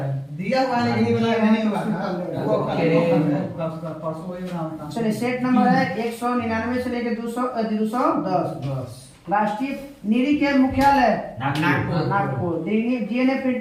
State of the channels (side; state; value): both; identical; correlation 1.00